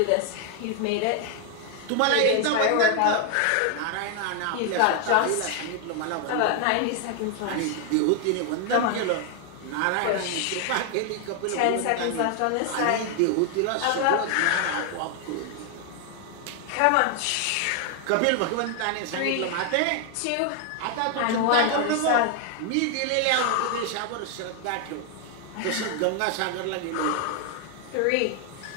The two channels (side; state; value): both; different; correlation 0.00